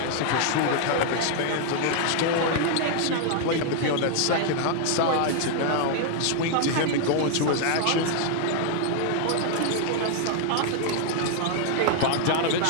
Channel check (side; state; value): both; different; correlation 0.00